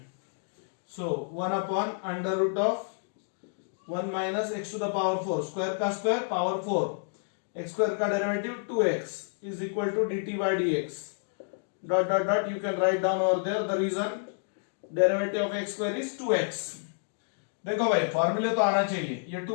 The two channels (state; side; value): silent; right; digital silence